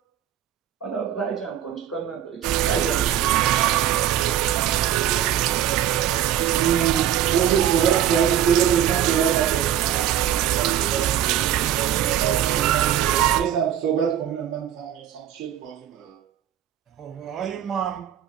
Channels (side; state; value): left; quieter; 10.7 dB